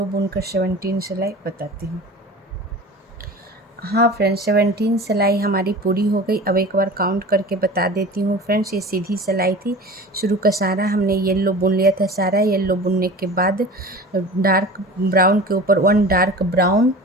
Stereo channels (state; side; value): normal; both; correlation 0.37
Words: बुनकर 17 सिलाई बताती हूँ। हाँ फ्रेंड्स, 17 सिलाई हमारी पूरी हो गई। अब एक बार काउंट करके बता देती हूँ फ्रेंड्स। ये सीधी सिलाई थी, शुरू का सारा हमने येलो बुन लिया था। सारा येलो बुनने के बाद डार्क ब्राउन के ऊपर 1 डार्क ब्राउन